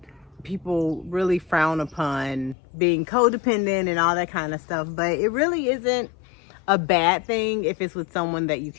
people really frown upon being codependent and all that kind of stuff. But it really isn't a bad thing if it's with someone that you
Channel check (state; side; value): drops out; right; at 2.6 s